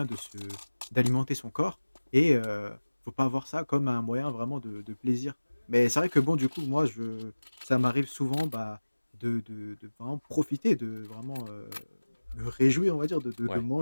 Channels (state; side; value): inverted; both; correlation -1.00